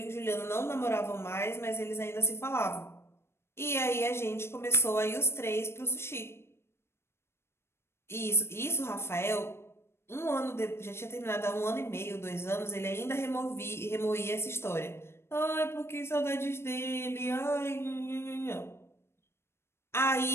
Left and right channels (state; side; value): late; right; 0.12 ms